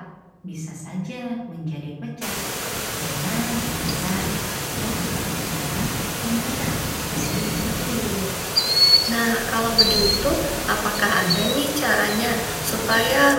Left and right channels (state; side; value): identical; both; correlation 1.00